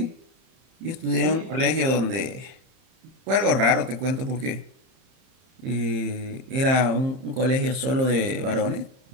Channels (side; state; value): left; late; 31 ms